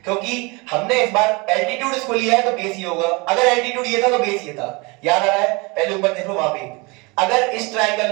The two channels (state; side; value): quieter; left; 27.3 dB